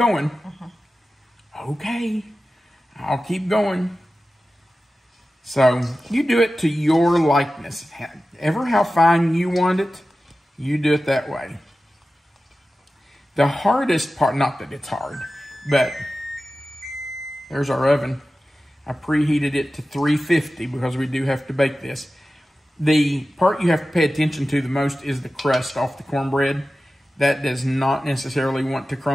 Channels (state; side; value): normal; both; correlation 0.95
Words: Okay, I'll keep going. So you do it to your likeness. Ever how fine you want it, you do it that way. The hardest part, not that it's hard, but there's our oven. I preheated it to 350 because we do have to bake this. The part you have to pay attention to the most is the crust off the cornbread. That does not necessarily want to